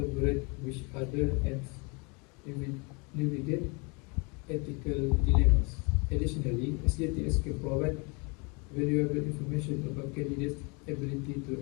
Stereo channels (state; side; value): quieter; right; 31.2 dB